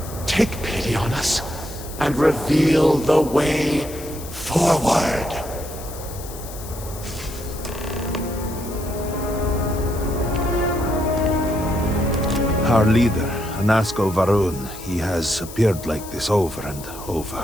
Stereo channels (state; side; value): noise; left; hiss, 14 dB below the sound